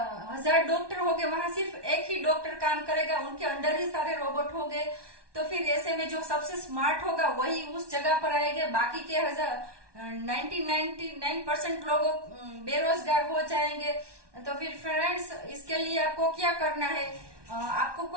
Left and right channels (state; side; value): late; left; 1.2 ms